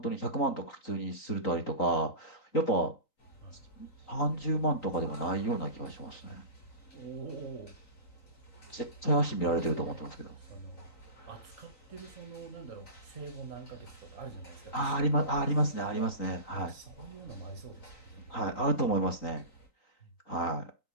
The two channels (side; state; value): right; late; 3.9 ms